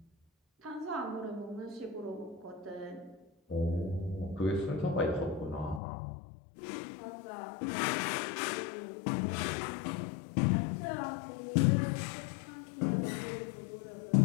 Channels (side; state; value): right; drops out; at 5.8 s